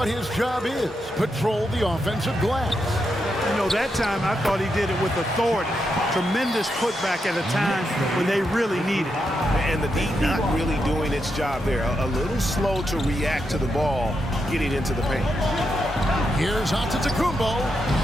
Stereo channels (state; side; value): normal; both; correlation 0.84